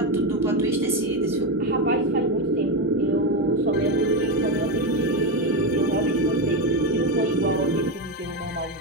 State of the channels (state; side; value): normal; both; correlation 0.13